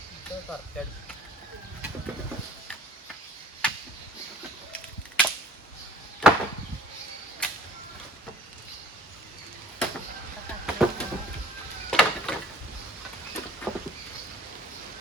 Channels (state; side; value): normal; both; correlation 0.52